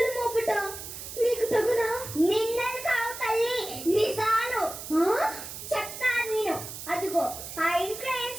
మోపుట నీకు తగునా? నిందలు కావు తల్లి, నిజాలు. చెప్తాను నేను. అదిగో ఆ ఇంట్లో ఏం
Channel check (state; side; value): noise; right; hiss, 10 dB below the sound